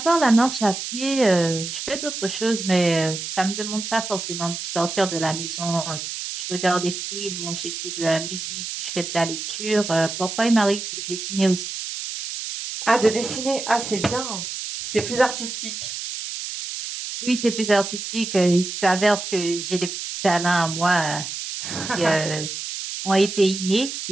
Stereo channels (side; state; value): right; noise; hiss, 6 dB below the sound